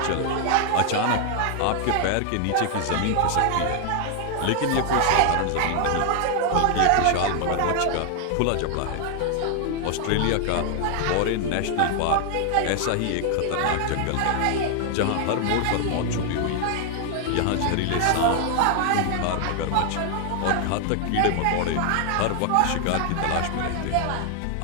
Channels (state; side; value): different; both; correlation 0.00